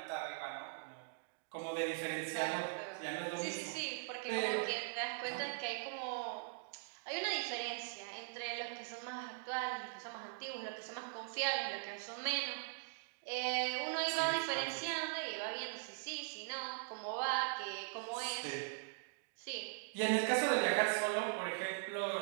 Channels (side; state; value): left; silent; digital silence